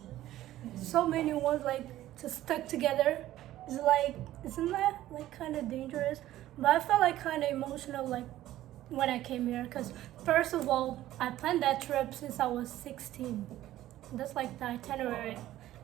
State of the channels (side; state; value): left; quieter; 14.2 dB